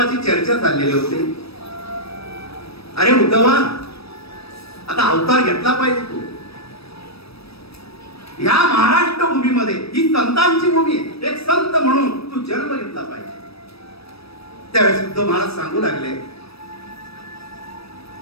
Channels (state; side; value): late; right; 0.78 ms